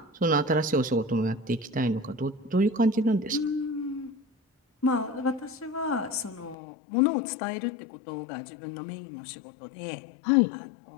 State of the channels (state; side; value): drops out; right; at 6.6 s